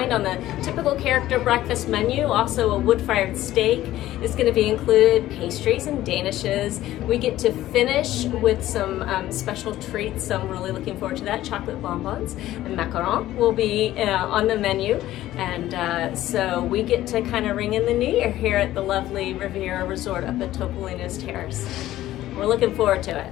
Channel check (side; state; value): right; quieter; 14.5 dB